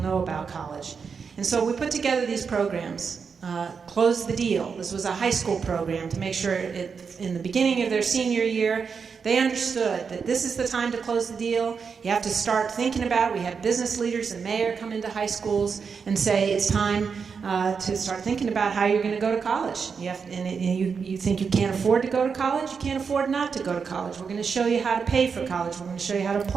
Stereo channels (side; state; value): left; quieter; 5.8 dB